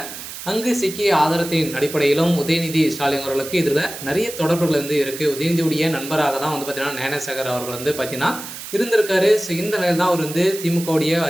அங்கு சிக்கிய ஆதாரத்தின் அடிப்படையிலும் உதயநிதி ஸ்டாலின் அவர்களுக்கு இதில் நிறைய தொடர்புகள் இருக்குது. உதயநிதியுடைய நண்பராக தான் பார்த்தீங்கன்னா ஞானசேகர் அவர்கள் பார்த்தீங்கன்னா இருந்திருக்காரு. ஸோ இந்த நிலையில் தான் அவர் திமுகவுடைய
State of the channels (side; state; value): right; noise; hiss, 11 dB below the sound